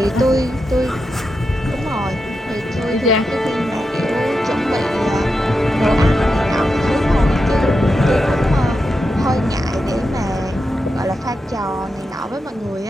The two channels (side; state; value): both; normal; correlation 0.88